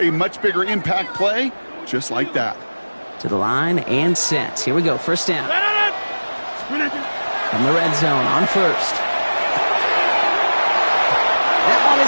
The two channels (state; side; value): inverted; both; correlation -1.00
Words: a much bigger impact play, just like that. To the line and set. Here we go, 1st down. From the red zone on 1st. That one